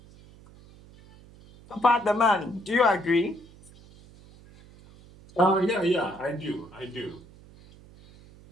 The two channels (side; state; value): right; noise; hum, 23 dB below the sound